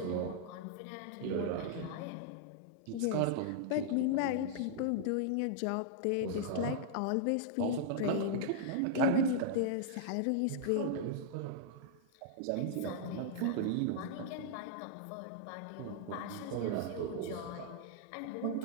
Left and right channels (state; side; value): different; both; correlation -0.02